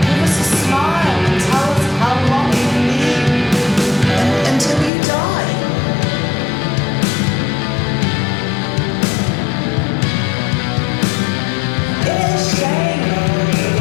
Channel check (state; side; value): drops out; right; at 4.9 s